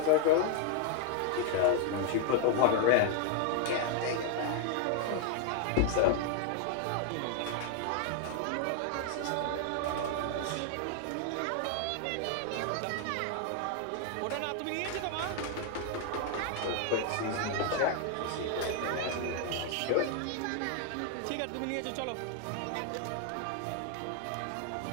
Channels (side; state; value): both; different; correlation 0.00